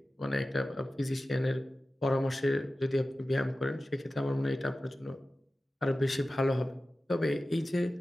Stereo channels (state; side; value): normal; both; correlation 0.95